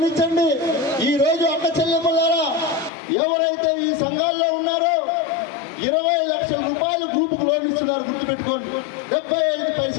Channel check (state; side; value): drops out; right; at 2.9 s